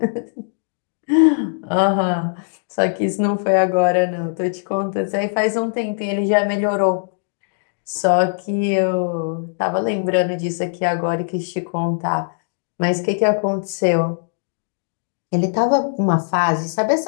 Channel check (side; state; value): right; silent; digital silence